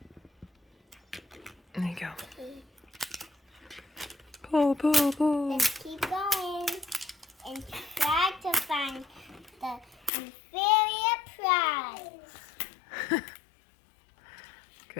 There you go. Pull, pull, pull. Let's keep going and try to find the inferior prize.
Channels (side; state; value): right; drops out; at 10.1 s